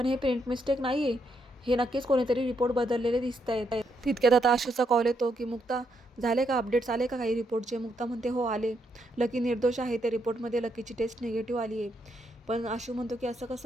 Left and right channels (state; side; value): normal; both; correlation 0.77